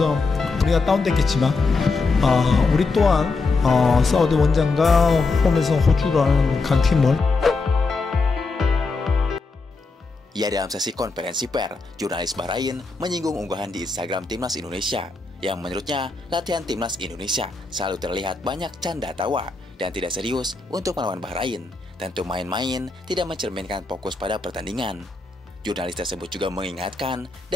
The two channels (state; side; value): quieter; right; 3.9 dB